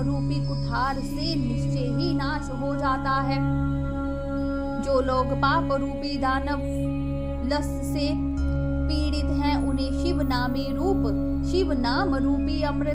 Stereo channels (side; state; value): both; identical; correlation 1.00